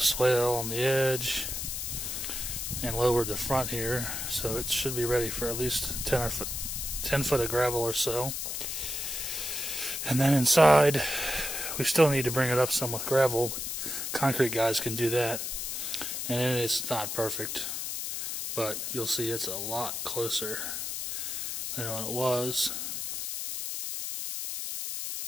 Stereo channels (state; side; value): noise; left; hiss, 4 dB below the sound